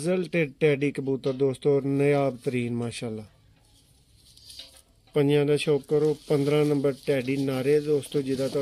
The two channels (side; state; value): both; identical; correlation 1.00